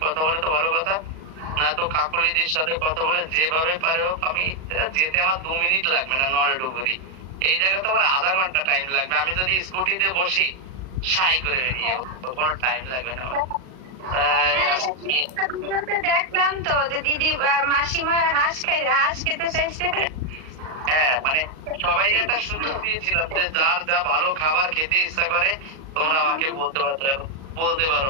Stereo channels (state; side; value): late; left; 38 ms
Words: কথা বলে তো ভালো কথা, না তো কাকলিদির সাথে কথা বলে যেভাবে পারে হোক। আমি যেতে আমার 2 মিনিট লাগবে না নরেডুগুরি, এই জায়গায় তো আমার আধা ঘন্টা টাইম লাগবে। আমি যদি স্কুটিতে বসি সাই করে বেরিয়ে যাবো, কোনো টাইম লাগবে না। দেখলাম তো যে দিদি মাসিমা হাঁস খেতে চাইছে। হ্যাঁ মানে সবাই একটা সুযোগ দিয়েছিলাম যে যার যা ভালো খাবার খেতে ইচ্ছা করে তোমরা আমাকে বলতে পারো।